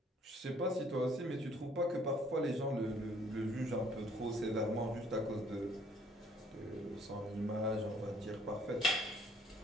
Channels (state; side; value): normal; both; correlation 0.60